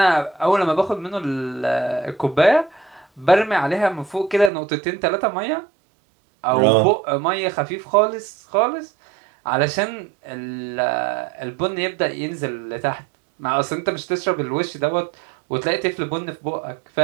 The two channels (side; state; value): left; drops out; at 4.5 s